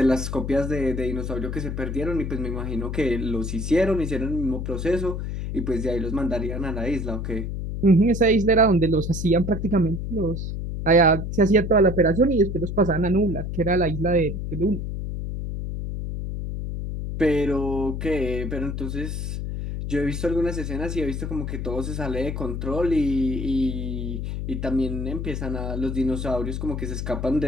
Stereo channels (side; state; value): left; noise; hum, 4 dB below the sound